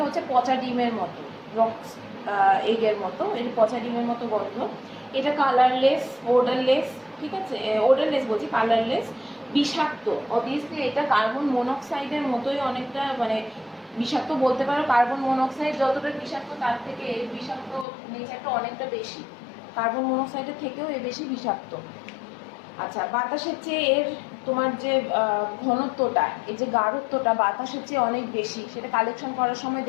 হচ্ছে পচা ডিমের মতো, রক্স এগের মতো, এর পচা ডিমের মতো গন্ধ। এটা কালারলেস, ওডারলেস, ঠিক আছে, ওডারলেস বলছি, কালারলেস বিষাক্ত। অবভিয়াসলি এটা কার্বন মনোক্সাইডের মতোই অনেকটা, মানে বিষাক্ত বলতে পারো। কার্বন মনোক্সাইড যতটা বিষাক্ত তার থেকে এর বিষাক্ত নেচারটা অনেকটা বেশি, কার্বন মনোক্সাইডের থেকেও এ বেশি বিষাক্ত। আচ্ছা, বাতাসের চেয়ে এর তোমার যে ঘনত্বটা, এই যে গাঢ়ত্বটা বাতাসের চেয়ে অনেক বেশি। সেটা কালেকশন করার সময়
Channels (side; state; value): right; drops out; at 17.9 s